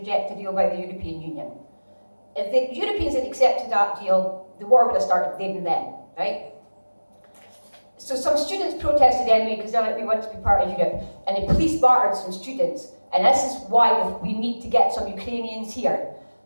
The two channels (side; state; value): both; inverted; correlation -1.00